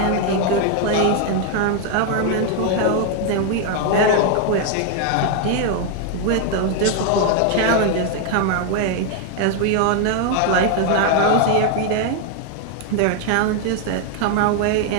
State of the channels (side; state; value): both; different; correlation 0.00